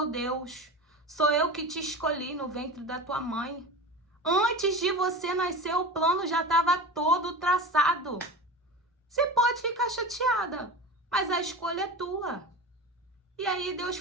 Deus, sou eu que te escolhi no ventre da tua mãe. Antes de você nascer, o plano já estava todo traçado. Você pode ficar chateada, mas a escolha é tua. E aí Deus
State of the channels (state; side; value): normal; both; correlation 0.29